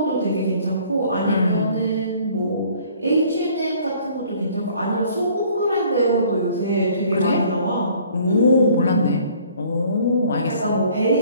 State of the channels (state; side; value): inverted; both; correlation -0.56